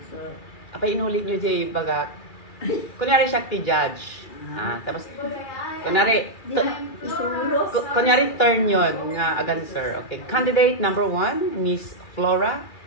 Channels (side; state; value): right; late; 2.3 ms